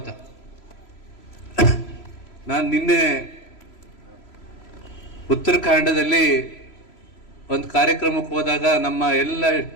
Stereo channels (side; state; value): right; late; 3.0 ms